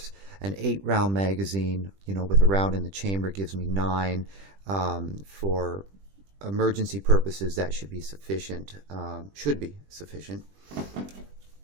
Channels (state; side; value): late; left; 20 ms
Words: an 8-round magazine, you know, with a round in the chamber gives me 9. For emergency purposes, that should be sufficient.